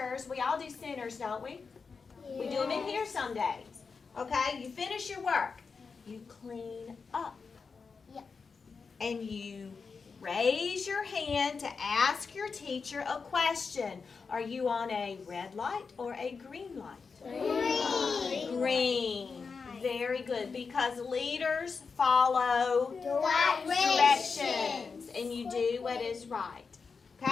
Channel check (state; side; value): quieter; right; 5.1 dB